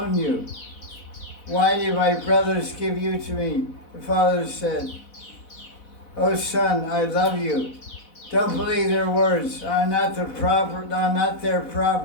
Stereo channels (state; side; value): late; right; 4.0 ms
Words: you? why did my brothers give you to me? The father said, "Oh son, I love you. Don't believe their words. I'm not their